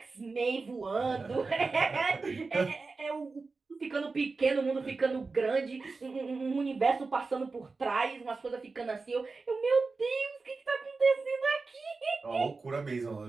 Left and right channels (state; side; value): quieter; left; 4.1 dB